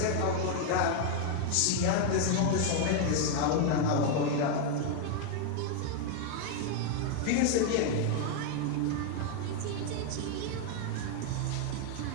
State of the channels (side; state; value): both; different; correlation 0.00